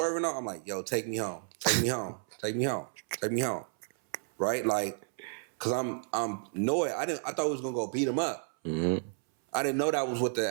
off, I'm like, "Yo, take me home. Take me home. Take me home. Take me home." Right? Like, cause I'm annoyed. I thought we was gonna go beat him up. Mm-hmm. I didn't know that was what the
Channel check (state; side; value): silent; left; 57 dB below the other